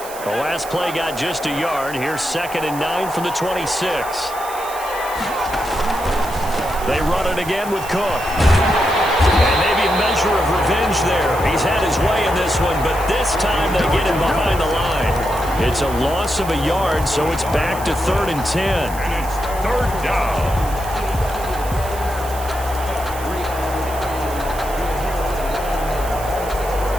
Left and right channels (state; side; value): noise; right; hiss, 14 dB below the sound